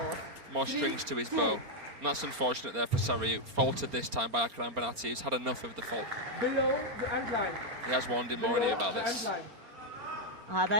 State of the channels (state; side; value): late; left; 4.3 ms